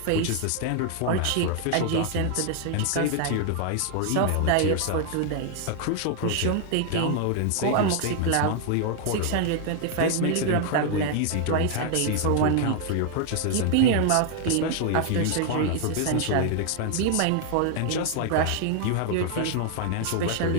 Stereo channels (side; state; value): both; different; correlation 0.00